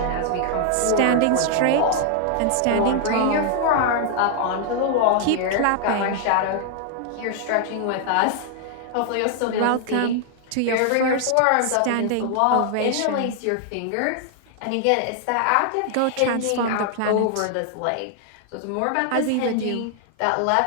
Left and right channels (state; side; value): different; both; correlation 0.00